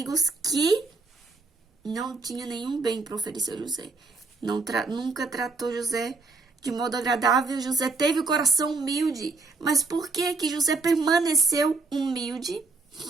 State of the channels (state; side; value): quieter; left; 3.8 dB